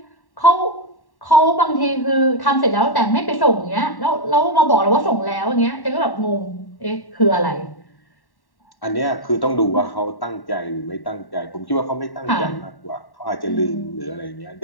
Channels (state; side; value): late; right; 1.1 ms